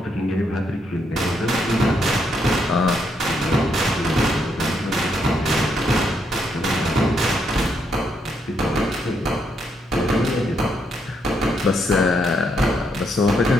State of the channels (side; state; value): both; normal; correlation 0.77